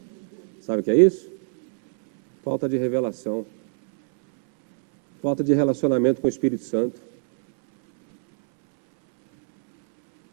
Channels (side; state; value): left; silent; 64 dB below the other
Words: Sabe o que é isso? Falta de revelação. Falta de relacionamento com o Espírito Santo.